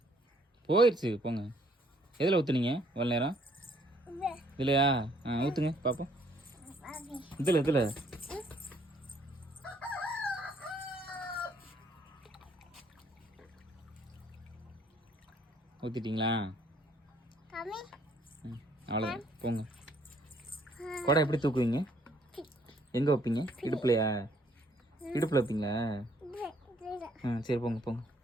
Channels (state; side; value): normal; both; correlation 0.65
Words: போயிடுச்சு போங்க. எதில் ஊற்றுனீங்க இவ்வளோ நேரம்? இல்லையா? ஊற்றுங்க பார்ப்போம். இதில் ஊற்றிட்டீங்களா? அவ்வளோதான் போங்க. குடம் எப்படி தூக்குவீங்க? எங்கே வைப்பீங்க? இடுப்புலையா? இடுப்பில் வைப்பீங்களா? சரி போங்க போங்க.